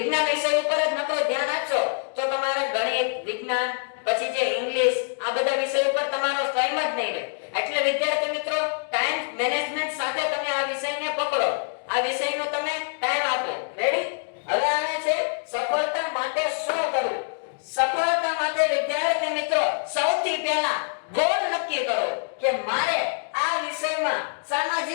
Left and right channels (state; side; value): silent; right; digital silence